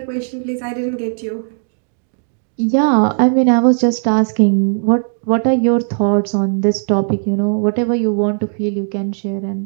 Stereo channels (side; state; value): left; silent; 62 dB below the other